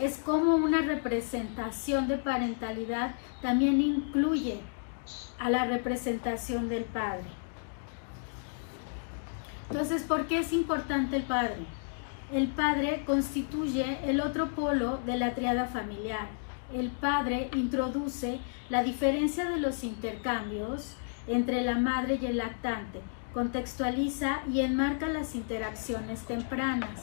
cómo una representación de parentalidad también incluye a la representación del padre. Entonces, ¿por qué es importante el padre? El padre constituye el otro polo de la tríada familiar. El padre introduce la diferencia de los intercambios entre la madre y el lactante, contextualiza y enmarca las interacciones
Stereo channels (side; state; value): right; silent; digital silence